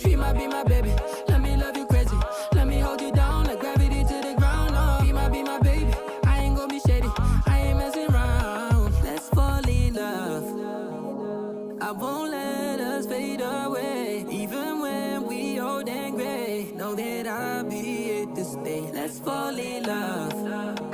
She might be my baby, let me love you crazy. Let me hold you down like gravity to the ground. Oh, be my baby, I ain't gonna be shady, I ain't messing around. Let's fall in love, I won't let us fade away. Even when we old and gray, know that I'll be here to stay. Let's fall in love,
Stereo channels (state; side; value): identical; both; correlation 1.00